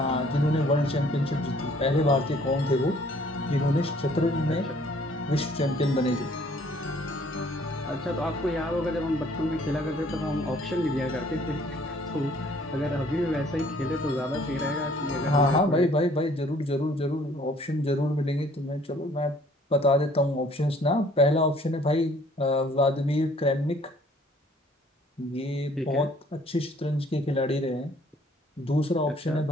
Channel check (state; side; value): normal; both; correlation 0.58